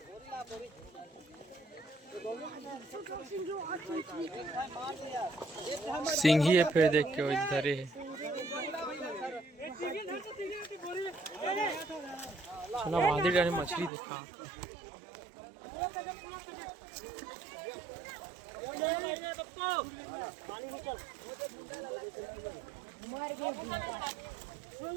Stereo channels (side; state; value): left; drops out; at 13.9 s